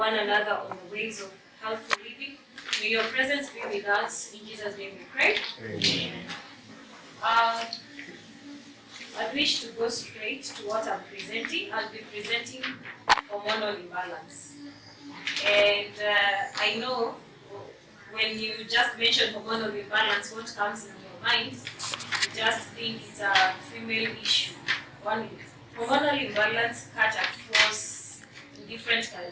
another on the ways of healthy living, may your presence be with us. In Jesus' name we pray. Amen. I wish to go straight to what I'm presenting. I'll be presenting hormonal imbalance. And I know when you just mention hormonal imbalance, what comes in your mind, you just think it's a female issue. Hormonal imbalance cut across different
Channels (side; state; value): both; identical; correlation 1.00